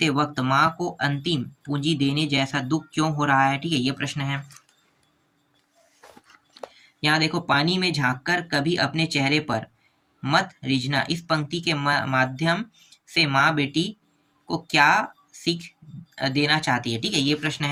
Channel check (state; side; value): identical; both; correlation 1.00